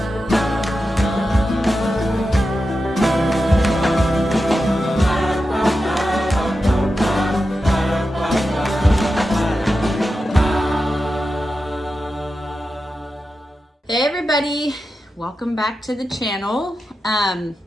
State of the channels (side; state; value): both; normal; correlation 0.91